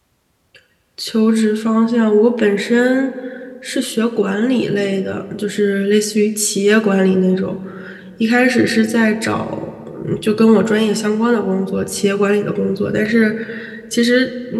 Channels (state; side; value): identical; both; correlation 1.00